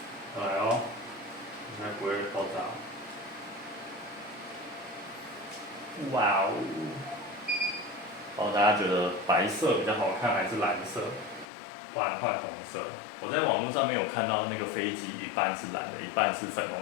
来哦，应该不会爆炸。哇哦！大家觉得白色比较好看还是蓝色？不然换红色。我在网络上面有看到那个飞机一半是蓝的，一半是粉红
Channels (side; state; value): right; drops out; at 11.5 s